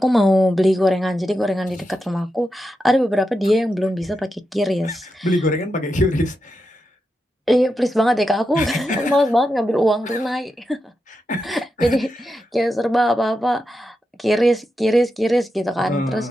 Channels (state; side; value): normal; both; correlation 0.88